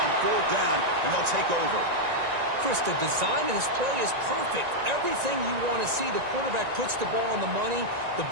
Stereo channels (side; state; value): left; late; 1.9 ms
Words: fourth down, and they'll take over. Chris, the design of this play is perfect. Everything you want to see. The quarterback puts the ball on the money. The